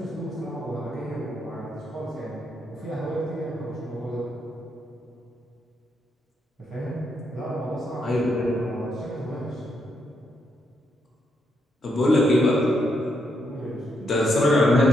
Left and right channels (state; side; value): normal; both; correlation 0.78